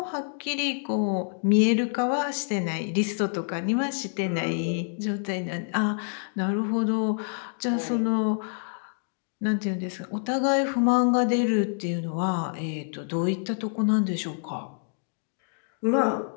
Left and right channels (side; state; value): right; silent; 60 dB below the other